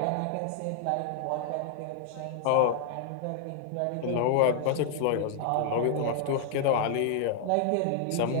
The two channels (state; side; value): different; both; correlation 0.00